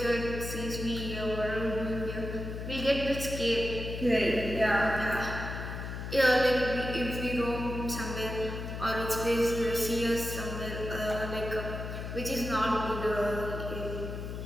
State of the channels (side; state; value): left; noise; hum, 6 dB below the sound